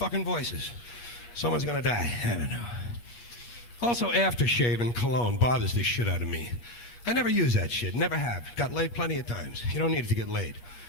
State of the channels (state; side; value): late; right; 8.4 ms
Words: voices. Someone's gonna die. I don't know. Also, aftershave and cologne bothers the shit out of me. I never use that shit. Never have. Got laid plenty of times. You don't need it to get laid.